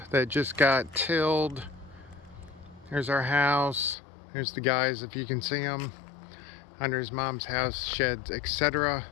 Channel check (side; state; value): right; drops out; at 4.0 s